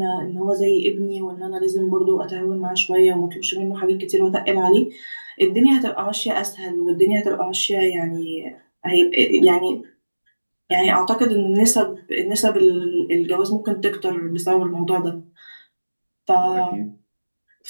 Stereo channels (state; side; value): inverted; both; correlation -1.00